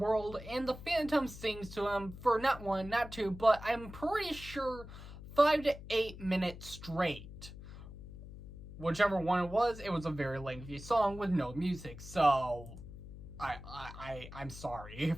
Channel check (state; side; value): noise; left; hum, 13 dB below the sound